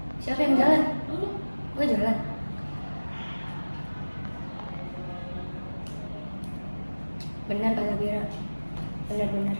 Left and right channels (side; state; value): both; inverted; correlation -1.00